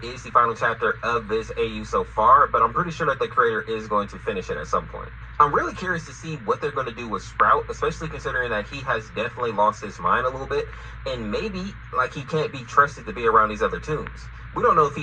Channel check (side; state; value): both; identical; correlation 1.00